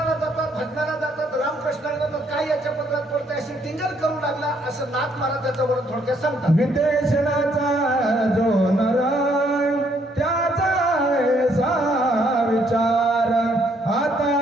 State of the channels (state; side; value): normal; both; correlation 0.69